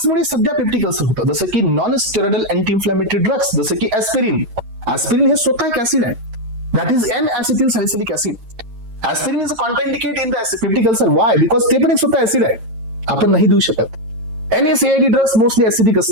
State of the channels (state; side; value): late; left; 9.0 ms